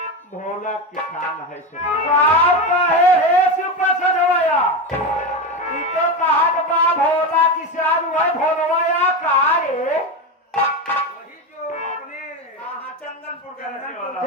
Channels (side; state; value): both; normal; correlation 0.17